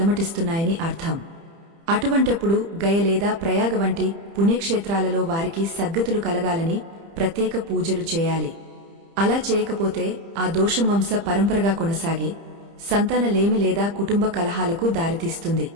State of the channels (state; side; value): late; left; 30 ms